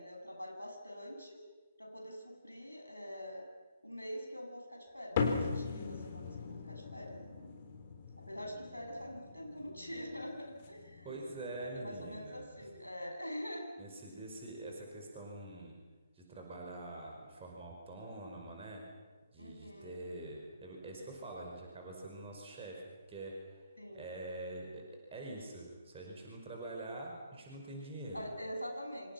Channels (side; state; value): both; inverted; correlation -0.69